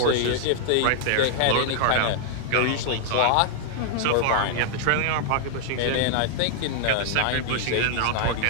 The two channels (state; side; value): different; both; correlation -0.01